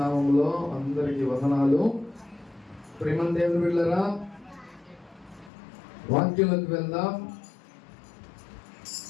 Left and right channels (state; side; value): drops out; right; at 5.5 s